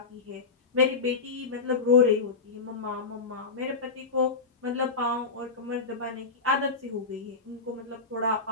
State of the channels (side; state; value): right; quieter; 4.3 dB